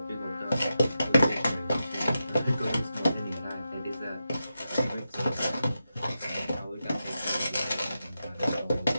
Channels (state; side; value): inverted; both; correlation -0.89